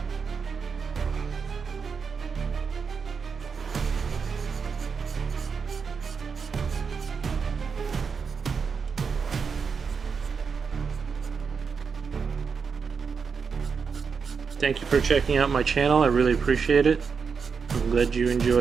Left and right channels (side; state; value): left; quieter; 5.8 dB